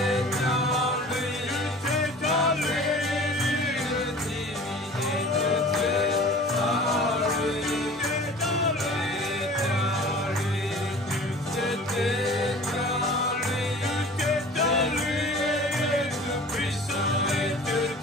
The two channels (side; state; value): both; normal; correlation 0.44